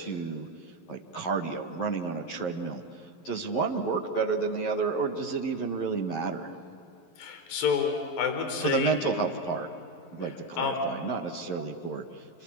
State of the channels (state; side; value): late; right; 11 ms